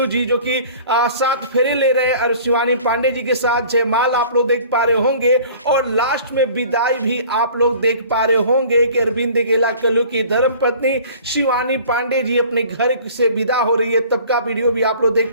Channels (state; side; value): inverted; both; correlation -0.47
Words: जी जो कि सात फेरे ले रहे हैं और शिवानी पांडे जी के साथ जयमाल आप लोग देख पा रहे होंगे और लास्ट में विदाई भी आप लोग देख पा रहे होंगे कि अरविंद अकेला कल्लू की धर्मपत्नी शिवानी पांडे जी अपने घर से विदा हो रही है। तब का वीडियो भी आप लोग देख